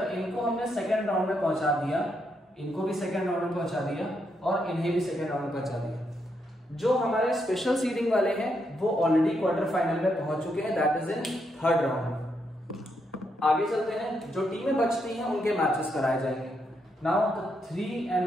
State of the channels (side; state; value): both; normal; correlation 0.79